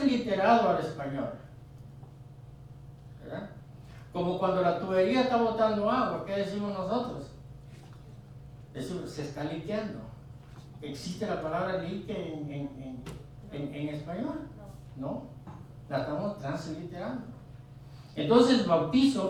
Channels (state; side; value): identical; both; correlation 1.00